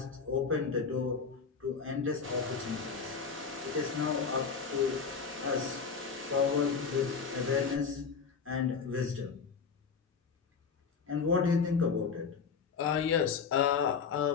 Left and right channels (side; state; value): right; quieter; 5.7 dB